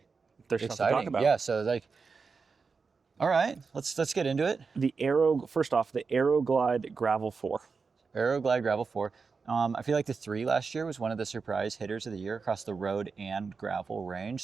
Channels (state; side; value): quieter; left; 4.9 dB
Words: There's exciting. stuff to talk about. Yeah. So all right, let's get into it. First off, the AeroGlide Gravel 4. AeroGlide Gravel 4. I feel like the 3 last year was one of the surprise hitters of the year across the road and gravel range.